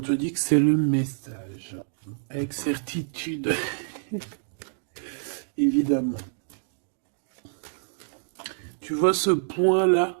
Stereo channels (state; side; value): silent; left; digital silence